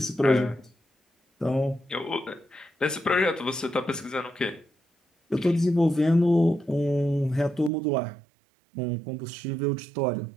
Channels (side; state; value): left; drops out; at 7.7 s